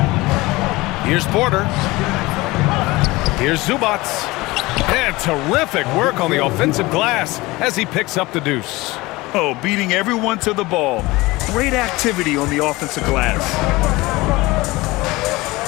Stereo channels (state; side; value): quieter; right; 21.0 dB